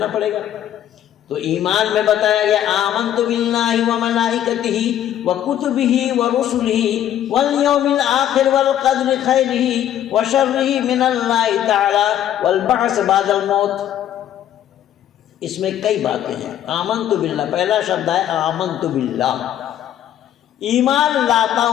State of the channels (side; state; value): right; quieter; 11.1 dB